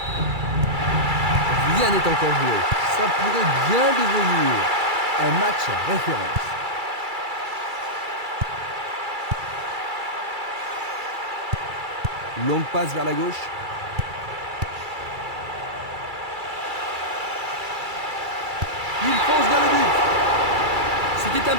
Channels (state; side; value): late; left; 2.3 ms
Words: Rien n'est encore joué. Ça pourrait bien devenir un match à référence. Longue passe vers la gauche. Il fonce vers le but. C'était un